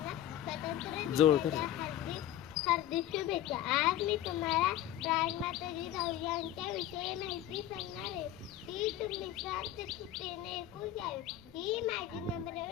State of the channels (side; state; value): right; quieter; 12.3 dB